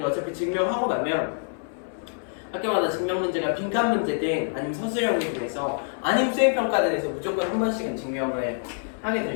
어차피 증명하고 나면 학교마다 증명 문제가 빈칸 문제든 아니면 서술형이 돼서 아니면 수행평가단에서 무조건 한 번씩은 증명을 하게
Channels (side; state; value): right; silent; 61 dB below the other